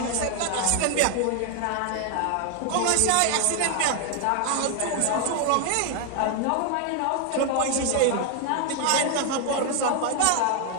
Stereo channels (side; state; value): both; different; correlation 0.00